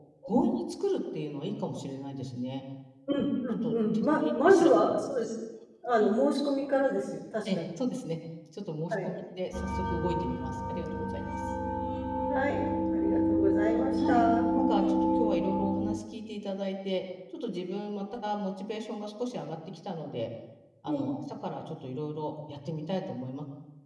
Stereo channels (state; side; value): identical; both; correlation 1.00